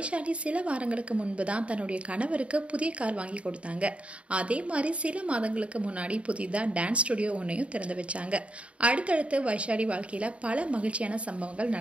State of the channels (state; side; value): late; left; 0.062 ms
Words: சில வாரங்களுக்கு முன்பு தான் தன்னுடைய கணவருக்கு புதிய கார் வாங்கி கொடுத்தாங்க. அதே மாதிரி சில மாதங்களுக்கு முன்னாடி புதிதா டான்ஸ் ஸ்டுடியோ ஒன்னையும் திறந்து வச்சாங்க. அடுத்தடுத்து வைஷாலி வாழ்க்கையில பல மகிழ்ச்சியான சம்பவங்கள்